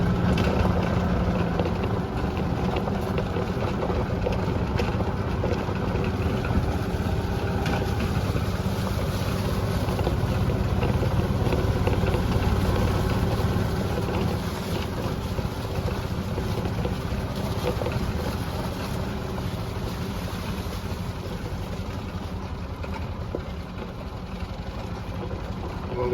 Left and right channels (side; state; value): both; identical; correlation 1.00